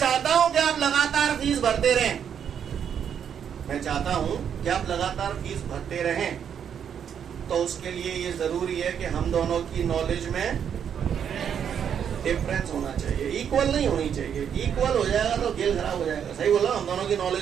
हूं कि आप लगातार फीस भरते रहें। मैं चाहता हूं कि आप लगातार फीस भरते रहें। तो उसके लिए ये जरूरी है कि हम दोनों की नॉलेज में डिफरेंस होना चाहिए, इक्वल नहीं होनी चाहिए। इक्वल हो जाएगा तो खेल खराब हो जाएगा। सही बोला? हम दोनों की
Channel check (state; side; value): quieter; left; 8.3 dB